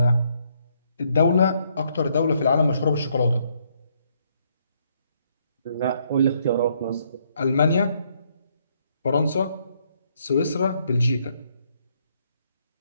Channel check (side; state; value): both; inverted; correlation -0.71